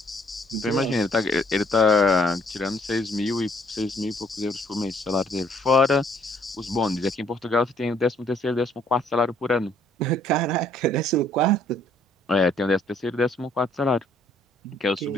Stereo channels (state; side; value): normal; both; correlation 0.63